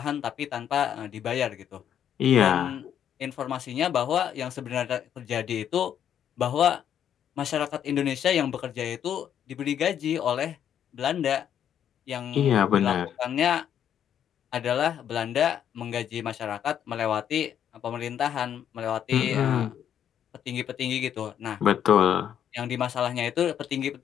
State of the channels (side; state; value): right; quieter; 9.4 dB